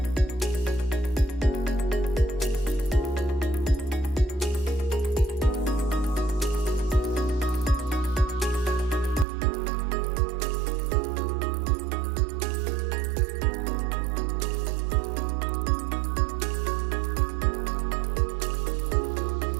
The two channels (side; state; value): left; drops out; at 9.2 s